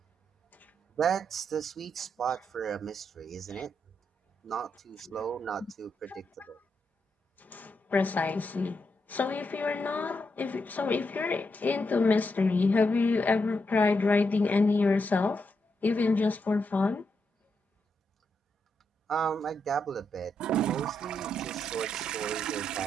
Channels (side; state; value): both; normal; correlation 0.82